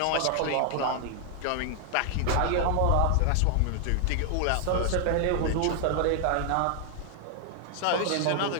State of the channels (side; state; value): both; different; correlation 0.00